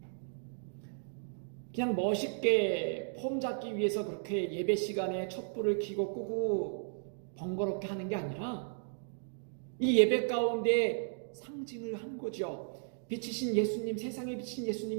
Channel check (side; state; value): left; silent; digital silence